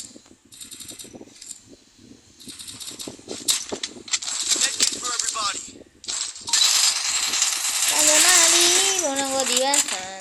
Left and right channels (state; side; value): identical; both; correlation 1.00